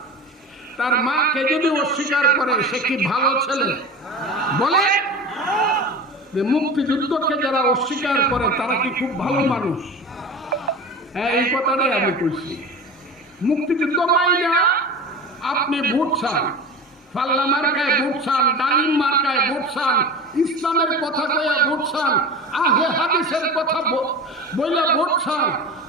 তার মাকে যদি অস্বীকার করে সে কি ভালো ছেলে? বলে মুক্তিযুদ্ধকে যারা অস্বীকার করে তারা কি খুব ভালো মানুষ? হ্যাঁ, এই কথাটাই আমি বলছি। মুক্তিযুদ্ধ মাইনা আপনি ভোট চান, পাল্লা মার্কায় ভোট চান, ডালিম মার্কায় ভোট চান, ইসলামের কথা কয়ে ভোট চান, আহলে হাদিসের কথা বলে ভোট চান,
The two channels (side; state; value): both; normal; correlation 0.32